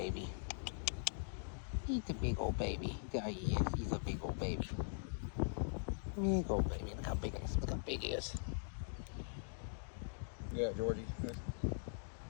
He's a big old baby. There he is. He's a big old baby. Big old baby. Look how big he is. Look how big he is. Yeah, Georgie.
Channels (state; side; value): silent; right; digital silence